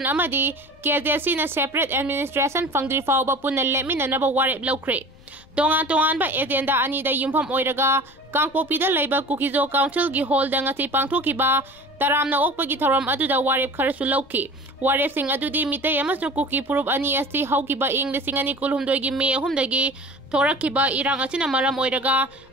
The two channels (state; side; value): noise; left; rumble, 27 dB below the sound